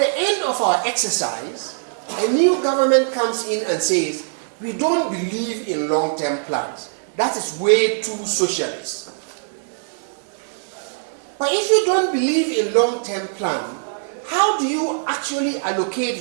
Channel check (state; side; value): silent; left; 65 dB below the other